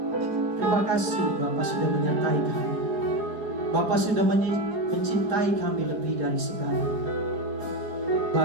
terima kasih Bapa sudah menyertai kami. Bapa sudah mencintai kami lebih dari segala.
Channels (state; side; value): late; left; 4.8 ms